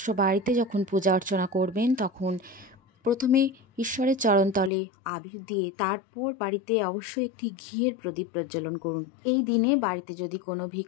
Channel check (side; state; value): right; drops out; at 4.7 s